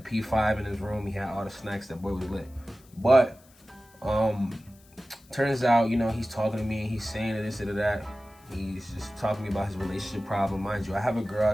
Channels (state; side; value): noise; left; hiss, 28 dB below the sound